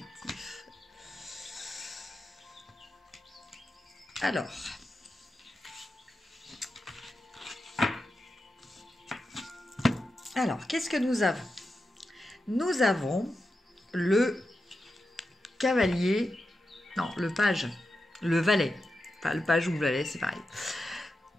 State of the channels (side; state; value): both; normal; correlation 0.89